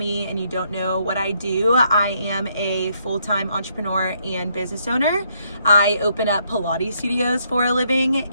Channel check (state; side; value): inverted; both; correlation -0.72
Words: and you don't know what I do, I am a full-time entrepreneur and business owner. I open up Pilates studios for a